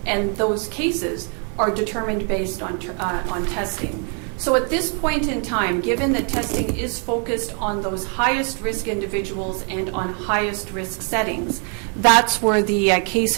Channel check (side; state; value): left; quieter; 39.8 dB